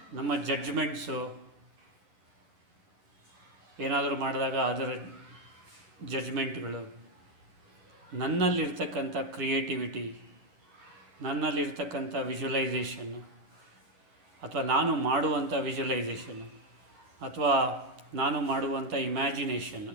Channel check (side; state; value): left; late; 11 ms